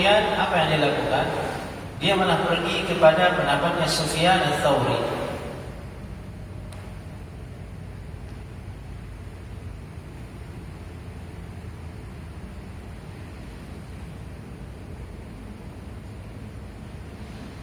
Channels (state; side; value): identical; both; correlation 1.00